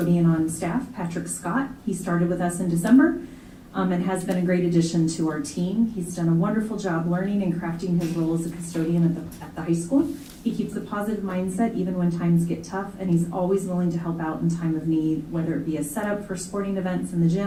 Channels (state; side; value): identical; both; correlation 1.00